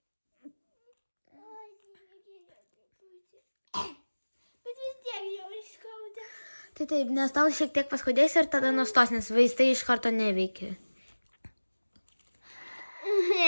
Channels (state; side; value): inverted; both; correlation -1.00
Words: Bet vis tiek jau skauda. Tai taip, nes tau šiek tiek paskaudės ir tada nustos, nes vaistai iš karto neveikia.